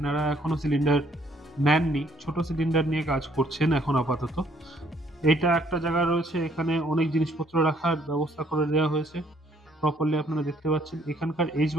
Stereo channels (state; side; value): normal; both; correlation 0.65